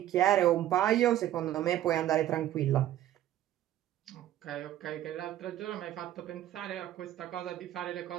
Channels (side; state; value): left; quieter; 12.9 dB